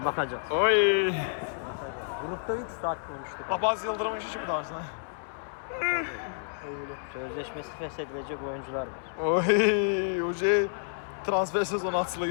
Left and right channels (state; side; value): silent; right; 58 dB below the other